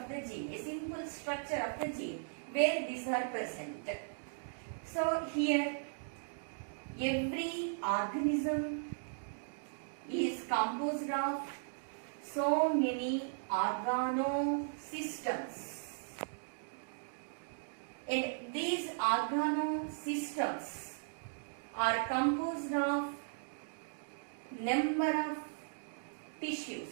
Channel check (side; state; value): left; silent; digital silence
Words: the gene, a simple structure of the gene, where these are present. So here, every organism is composed of so many organosystems. And these organosystems are composed of number of